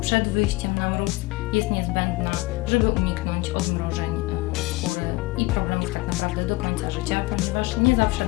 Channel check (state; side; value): quieter; right; 21.4 dB